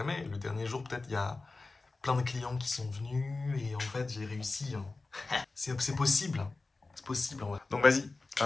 Le dernier jour, peut-être, il y a plein de clients qui sont venus et en fait, j'ai réussi, hein. C'est possible, hein. C'est possible, en vrai. Donc, vas-y.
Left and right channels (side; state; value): right; quieter; 3.6 dB